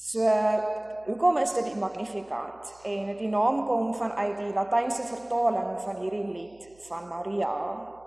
hoekom is dit die Magnificat? En die naam kom vanuit die Latynse vertaling van hierdie lied van Maria.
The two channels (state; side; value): noise; right; hum, 29 dB below the sound